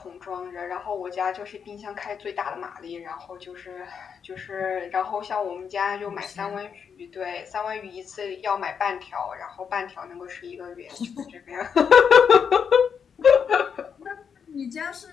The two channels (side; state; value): right; quieter; 6.9 dB